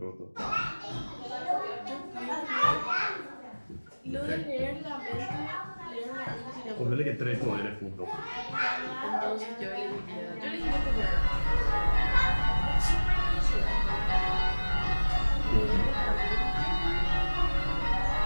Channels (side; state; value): both; inverted; correlation -1.00